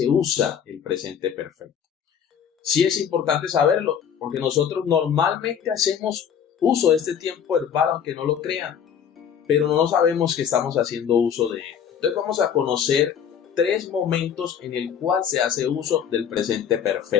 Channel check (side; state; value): right; quieter; 8.2 dB